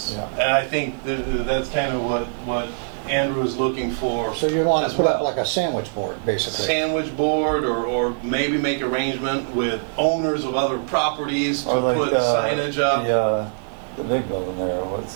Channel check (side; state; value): left; silent; 56 dB below the other